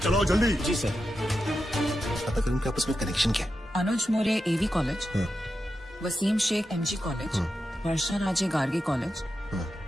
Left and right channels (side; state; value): both; normal; correlation 0.89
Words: चलाओ जल्दी। जी सर। पता करें इनके आपस में कनेक्शन क्या? Anuj More AV college, Waseem Shaikh MG college, Varsha Raje Gargi college,